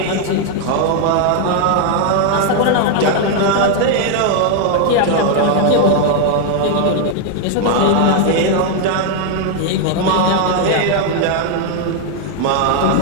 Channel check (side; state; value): both; different; correlation 0.00